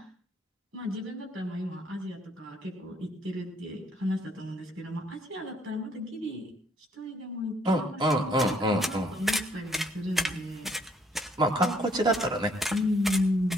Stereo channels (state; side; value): normal; both; correlation 0.65